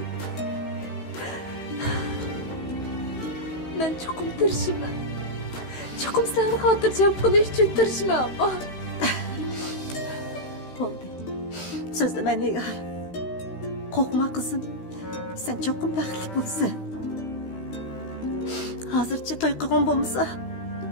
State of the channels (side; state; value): right; late; 15 ms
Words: Men cho'qim tirishman. Cho'qim seni xotirjam qilish uchun tirishman abba. Bo'ldi. So'zlama Nigar. Qo'rqma qizim. Sen cho'qim baxtli bo'lsan. Hozircha to'y qilgan bo'lmasa,